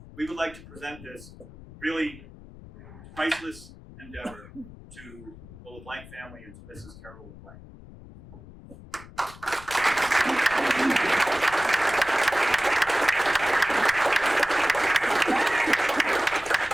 we would like to present this really priceless endeavor to the LeBlanc family and to Mrs. Carol LeBlanc.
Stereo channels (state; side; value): noise; left; rumble, 18 dB below the sound